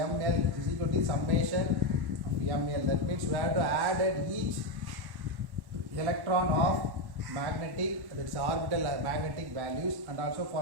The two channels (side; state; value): left; late; 1.1 ms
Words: is equal to summation of ML. That means we have to add at each electron of magnetic, that is orbital magnetic values, and also